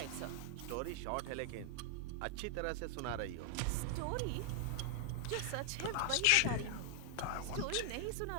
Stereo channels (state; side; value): different; both; correlation 0.00